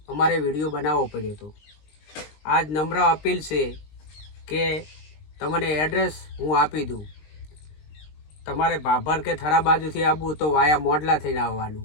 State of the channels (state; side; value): late; right; 20 ms